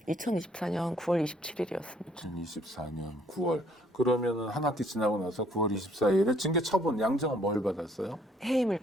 2024년 9월 27일이었습니다. 2024년 9월. 그러면은 한 학기 지나고 나서 9월 24일에 징계 처분 양정은 뭘 받았어요? 해임을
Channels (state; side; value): normal; both; correlation 0.63